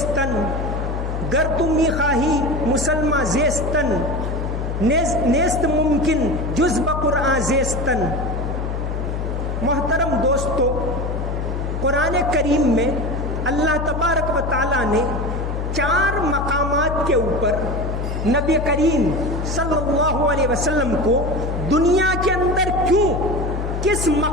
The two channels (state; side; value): noise; left; hum, 3 dB below the sound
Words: گر تم خواہی مسلمہ زیستن، نیست ممکن جز بقرآن زیستن. محترم دوستو، قرآن کریم میں اللہ تبارک و تعالیٰ نے 4 مقامات کے اوپر نبی کریم صلی اللہ علیہ وسلم کو دنیا کے اندر کیوں، کس